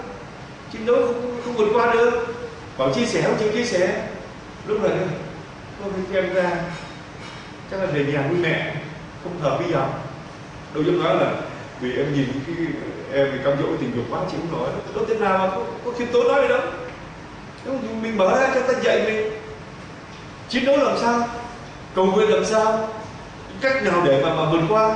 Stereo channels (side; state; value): both; identical; correlation 1.00